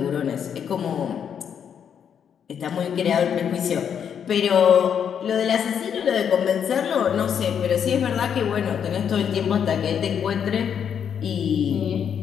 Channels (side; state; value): right; quieter; 8.0 dB